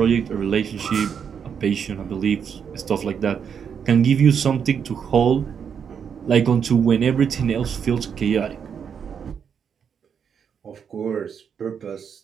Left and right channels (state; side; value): quieter; left; 7.3 dB